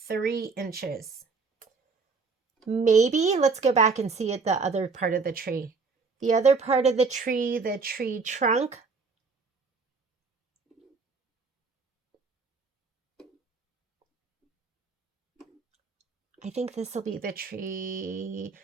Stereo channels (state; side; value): quieter; left; 4.6 dB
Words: 3 inches. Maybe let's go back and see at the other part of the tree. The other part of the tree trunk. I think this will be the tree.